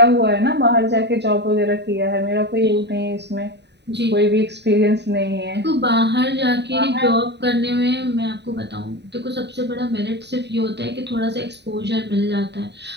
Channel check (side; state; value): left; late; 0.50 ms